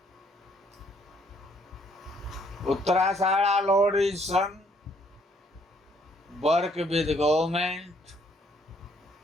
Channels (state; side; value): normal; both; correlation 0.66